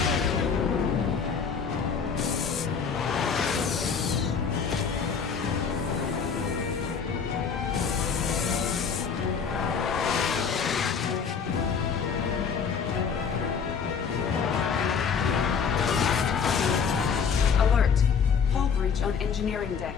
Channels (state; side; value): quieter; right; 6.2 dB